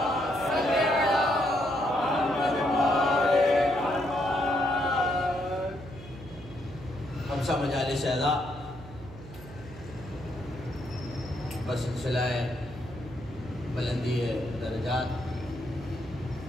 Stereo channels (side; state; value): right; noise; hum, 16 dB below the sound